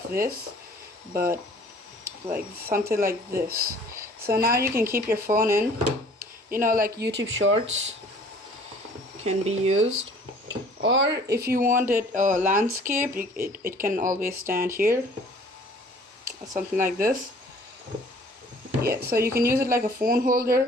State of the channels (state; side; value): normal; both; correlation 0.53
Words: this, but like something like this. So now you can keep your phone in, like YouTube Shorts can be used, or if you want it landscape, it can always stand here, or something like this. Yeah, so you can use it like a phone